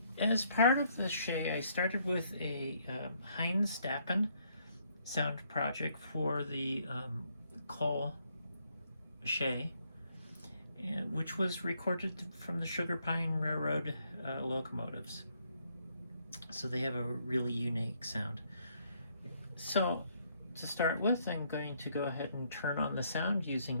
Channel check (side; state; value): both; inverted; correlation -0.71